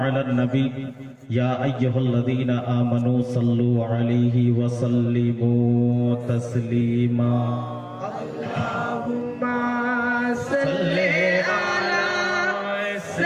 على النبي يا أيها الذين آمنوا صلوا عليه وسلموا تسليما. اللهم صل على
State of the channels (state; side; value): identical; both; correlation 1.00